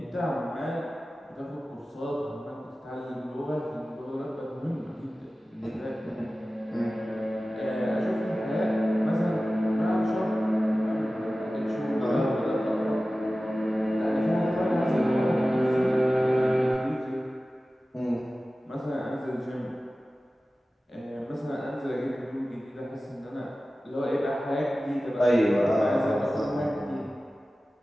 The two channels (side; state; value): both; normal; correlation 0.96